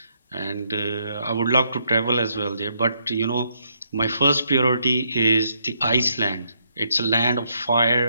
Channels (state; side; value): inverted; both; correlation -0.75